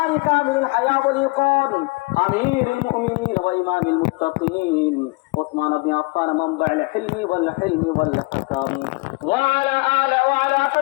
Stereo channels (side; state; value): right; quieter; 26.4 dB